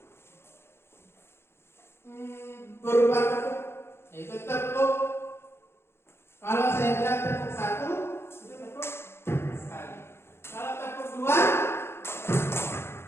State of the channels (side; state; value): right; late; 0.12 ms